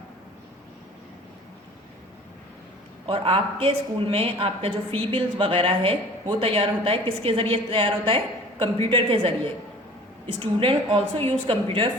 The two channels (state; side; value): normal; both; correlation 0.45